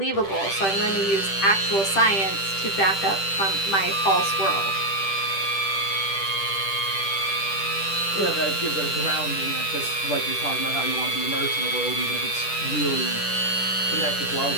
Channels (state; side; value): late; right; 10 ms